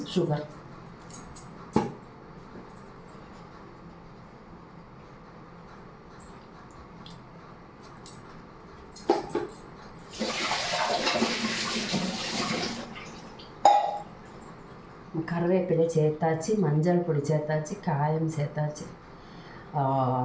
சுகர். கருவேப்பிலை சேர்த்தாச்சு, மஞ்சள் பொடி சேர்த்தாச்சு, காயம் சேர்த்தாச்சு,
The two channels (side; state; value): both; identical; correlation 1.00